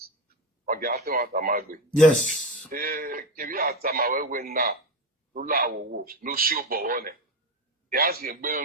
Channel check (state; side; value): normal; both; correlation 0.17